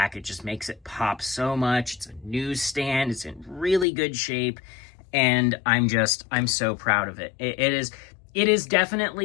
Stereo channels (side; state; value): right; drops out; at 3.9 s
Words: It just makes it pop so much. It's a newsstand. It's in really good shape, and I'm so proud of it. It is